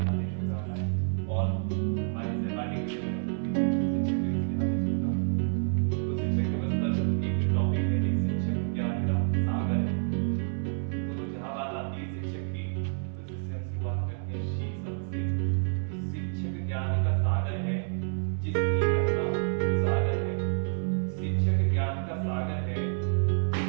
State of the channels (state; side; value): silent; left; 59 dB below the other